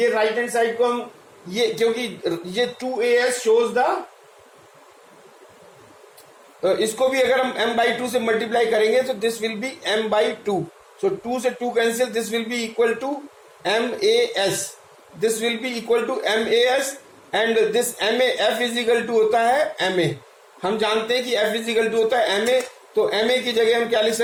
right hand side को हम ये, क्योंकि ये 2as शोज द, इसको भी अगर हम m/2 से मल्टीप्लाई करेंगे तो दिस विल बी m/2. सो 2 से 2 cancel, this will be equal टूmas. This will be equal to mas and this ma f is equal to होता है ma. हम जानते हैं कि f इज इक्वल टू होता है ma, तो ma की जगह हम क्या लिख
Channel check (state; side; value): identical; both; correlation 1.00